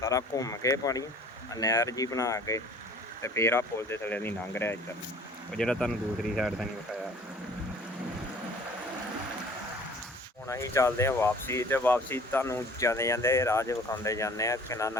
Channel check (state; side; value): normal; both; correlation 0.50